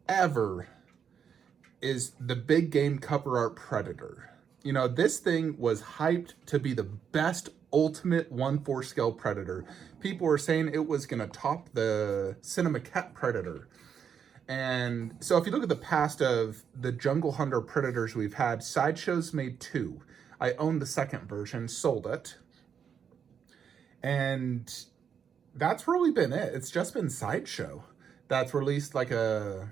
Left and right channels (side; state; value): left; quieter; 7.5 dB